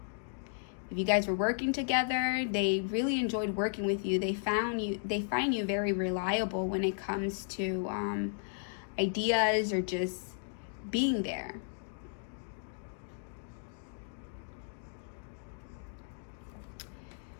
If you guys were working together, they really enjoyed working with you. They find you very reliable when it comes to ideas or just being there.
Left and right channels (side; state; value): right; silent; digital silence